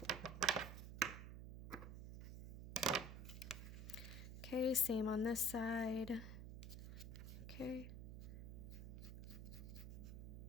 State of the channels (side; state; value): right; noise; hum, 8 dB below the sound